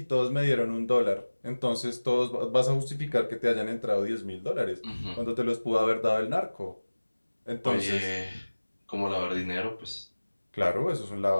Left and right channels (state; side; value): inverted; both; correlation -1.00